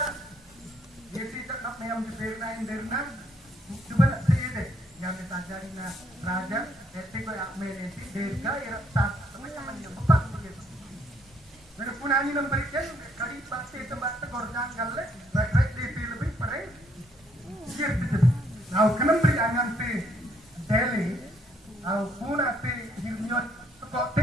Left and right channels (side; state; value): both; normal; correlation 0.69